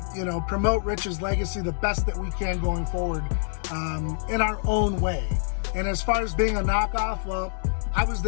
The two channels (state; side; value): silent; right; digital silence